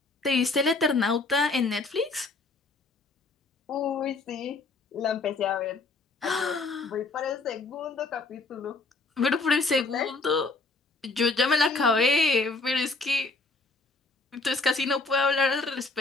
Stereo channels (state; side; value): quieter; right; 3.6 dB